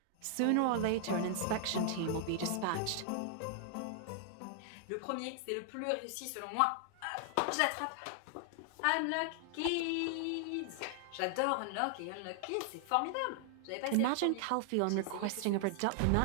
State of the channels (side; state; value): both; different; correlation 0.00